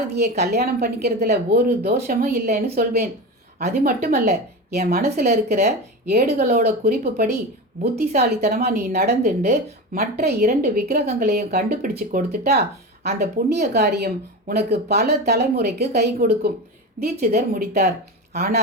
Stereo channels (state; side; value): normal; both; correlation 0.24